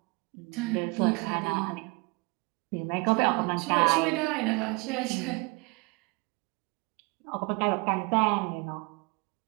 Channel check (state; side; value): quieter; left; 28.0 dB